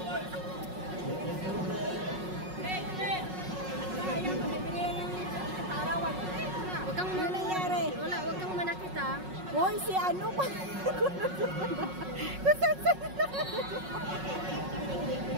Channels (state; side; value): late; left; 5.4 ms